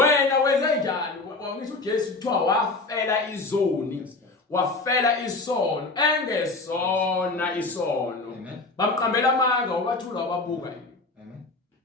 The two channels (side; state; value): right; quieter; 3.4 dB